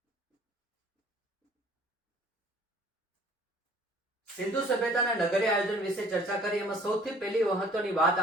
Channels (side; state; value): both; normal; correlation 0.53